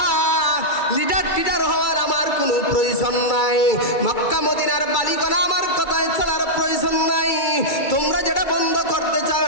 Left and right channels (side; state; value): right; late; 2.3 ms